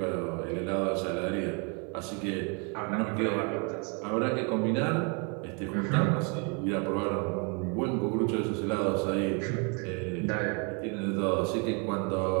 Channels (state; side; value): quieter; left; 35.0 dB